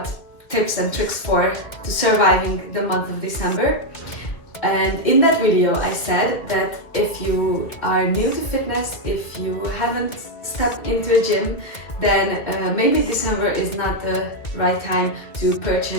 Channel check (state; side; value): late; right; 1.9 ms